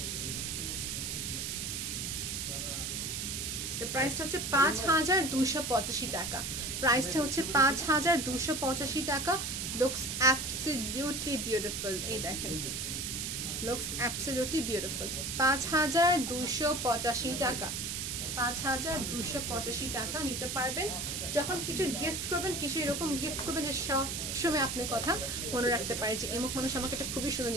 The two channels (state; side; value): noise; right; hiss, 3 dB below the sound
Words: হচ্ছে 5285 টাকা। প্রাইসটা হচ্ছে 5285 টাকা। Looks absolutely beautiful. এই দেখেন, লুকস অ্যাবসলিউটলি বিউটিফুল। 5285 টাকা, 5285 টাকা নিতে পারবেন। যখন কিছু গিফট করবেন, কিছু এরকম গিফট করবেন যে সব সময় আপনি কথা মনে রাখতে পারে যে এমক মানুষ আমাকে একটা খুবই সুন্দর